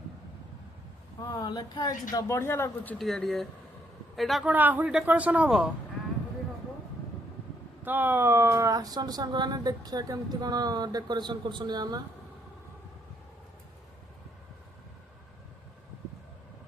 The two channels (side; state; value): both; normal; correlation 0.71